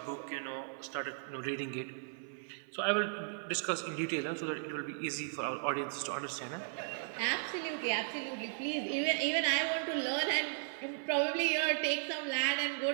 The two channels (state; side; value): silent; left; 54 dB below the other